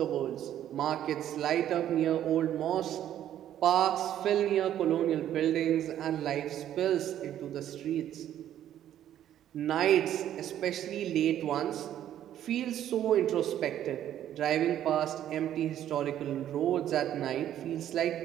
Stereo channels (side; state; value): left; quieter; 11.3 dB